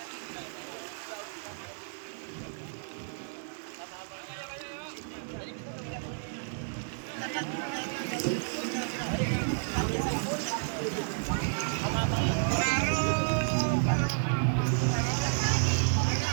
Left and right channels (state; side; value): silent; left; 57 dB below the other